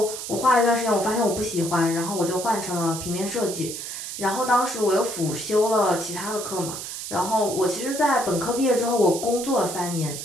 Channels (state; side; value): noise; right; hiss, 7 dB below the sound